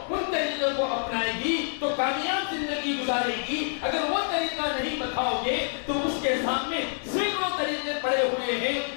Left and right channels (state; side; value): silent; right; 60 dB below the other